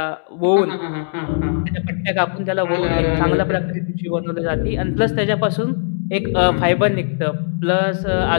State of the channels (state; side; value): silent; right; digital silence